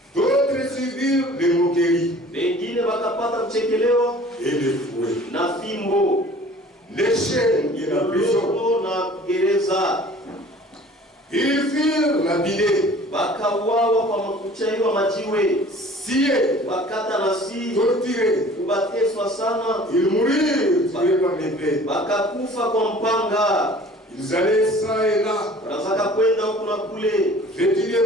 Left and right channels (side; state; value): both; normal; correlation 0.48